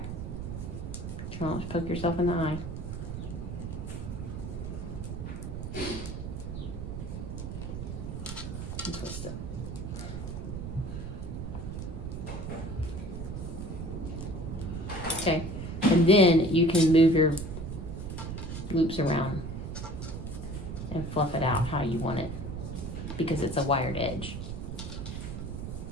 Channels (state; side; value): noise; right; rumble, 6 dB below the sound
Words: Try not to poke yourself in the eye. And twist it. Okay. And then you can move your loops around and fluff it out how you want it, because it's a wired edge.